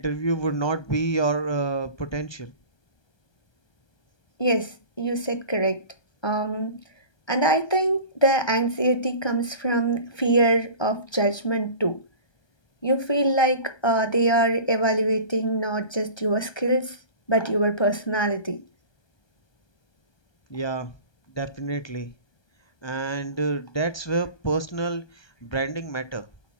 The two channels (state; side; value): late; right; 1.3 ms